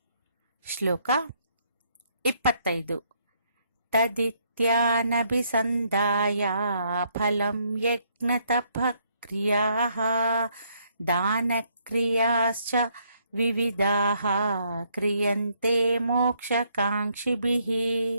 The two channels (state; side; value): inverted; both; correlation -0.71